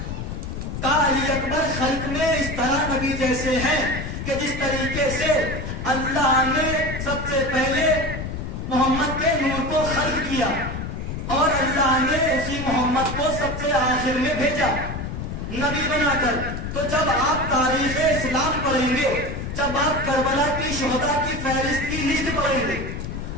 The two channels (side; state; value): left; noise; rumble, 6 dB below the sound